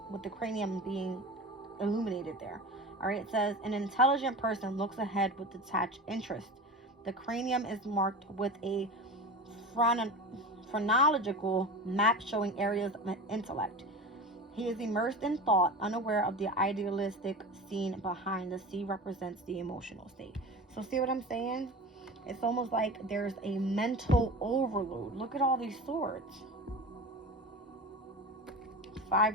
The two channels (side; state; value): both; normal; correlation 0.31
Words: with the cranium being illuminated there. All right, it says an intelligent person looks ahead with detached interest. The cranium is marked with a phrenological map showing areas of intellect. He is immersed in thought, unaware of the idealistic scene behind. The sea represents the emotional state. So see what I'm saying? It's almost like there's a mental overload. Look at all these swords.